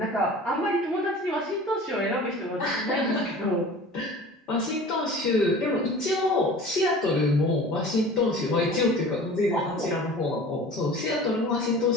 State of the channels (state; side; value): normal; both; correlation 0.41